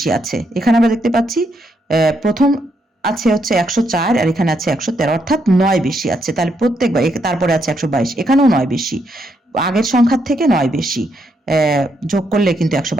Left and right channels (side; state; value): both; normal; correlation 0.77